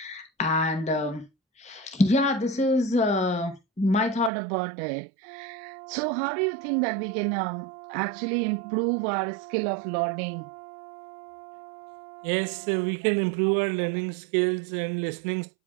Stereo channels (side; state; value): left; drops out; at 4.3 s